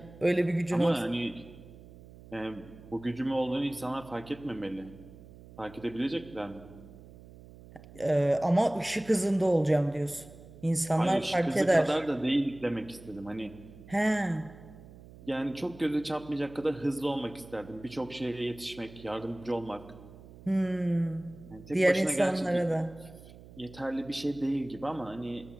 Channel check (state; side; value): noise; right; hum, 19 dB below the sound